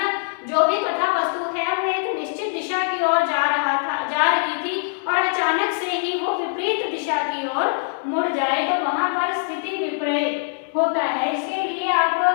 जो भी कथा वस्तु है वो एक निश्चित दिशा की ओर जा रही थी और अचानक से ही वो विपरीत दिशा की ओर मुड़ जाए, तो वहां पर स्थिति विपर्य होता है। इसके लिए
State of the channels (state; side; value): silent; right; digital silence